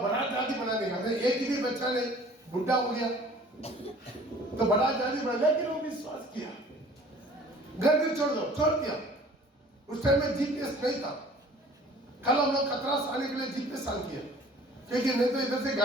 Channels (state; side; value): normal; both; correlation 0.49